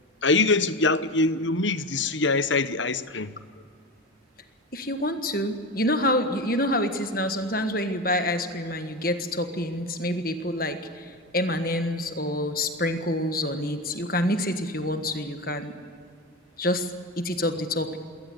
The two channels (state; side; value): normal; both; correlation 0.23